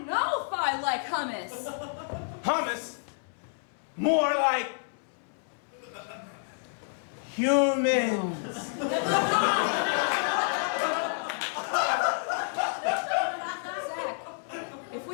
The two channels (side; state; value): right; silent; 58 dB below the other